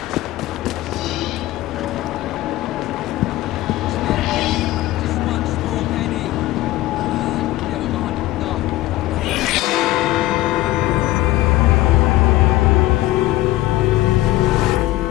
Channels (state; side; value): quieter; right; 16.8 dB